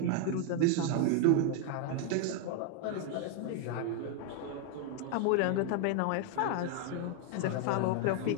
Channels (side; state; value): both; different; correlation 0.01